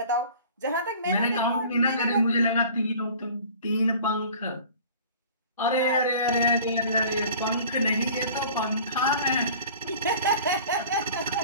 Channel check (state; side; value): inverted; both; correlation -0.45